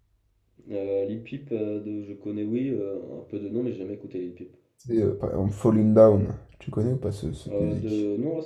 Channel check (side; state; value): both; identical; correlation 1.00